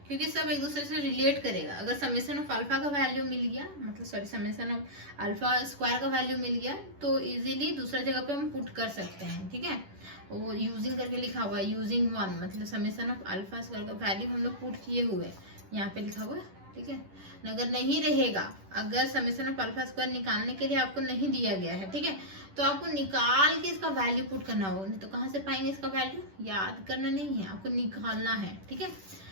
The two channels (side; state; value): left; late; 10 ms